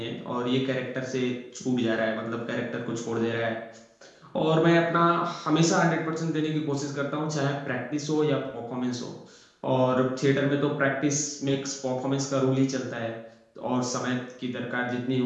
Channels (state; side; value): identical; both; correlation 1.00